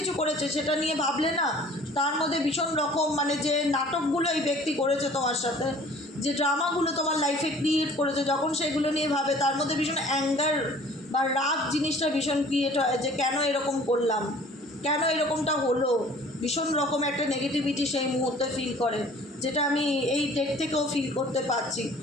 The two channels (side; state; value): both; normal; correlation 0.50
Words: করেছে। সেটা নিয়ে ভাবলে না তার মধ্যে ভীষণ রকম মানে যে নাটকগুলো এই ব্যক্তি করেছে তোমার সাথে, যে ড্রামাগুলো তোমার লাইফে ক্রিয়েট করেছে, যখন সেগুলো নিয়ে ভাবে তার মধ্যে ভীষণ অ্যাঙ্গার বা রাগ জিনিসটা ভীষণ ক্রিয়েট হয়, যে কেন এরকম করলাম, কেন এরকমটা হলো, ভীষণ রকম একটা নেগেটিভিটি সেই মুহূর্তে ফিল করে, যেটা আমি এই ডেট থেকেও ফিল করতে পারছি।